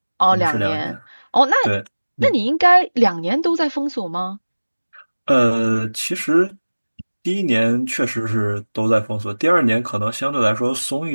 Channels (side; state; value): both; inverted; correlation -1.00